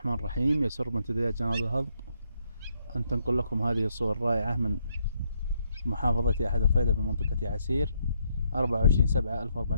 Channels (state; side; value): inverted; both; correlation -0.75